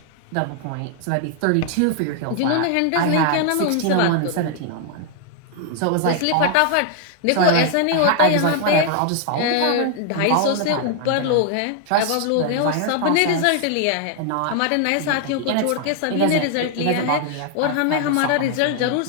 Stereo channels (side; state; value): both; different; correlation 0.00